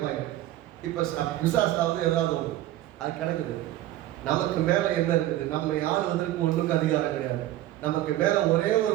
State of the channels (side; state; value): left; quieter; 14.5 dB